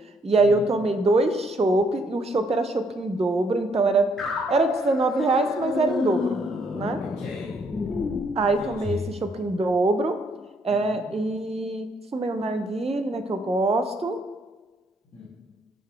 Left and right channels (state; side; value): normal; both; correlation 0.70